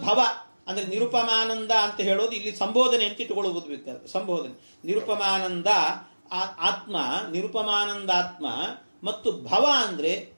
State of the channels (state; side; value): inverted; both; correlation -1.00